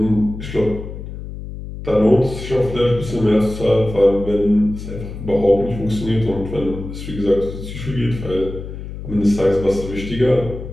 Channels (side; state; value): left; noise; hum, 10 dB below the sound